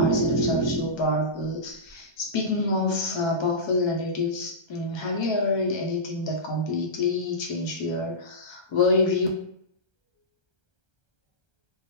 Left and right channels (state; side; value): late; right; 1.3 ms